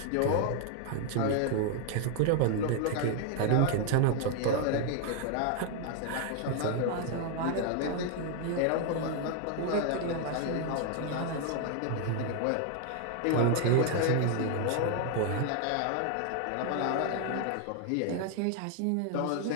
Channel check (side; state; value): both; different; correlation 0.00